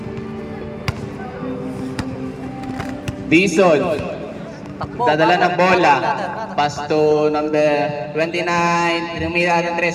Dison. Dadala ng bola. Pass to number 29. Tinumira ng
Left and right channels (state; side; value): identical; both; correlation 1.00